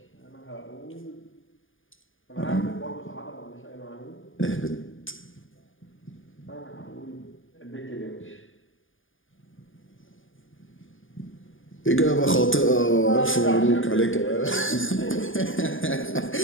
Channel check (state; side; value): late; right; 0.58 ms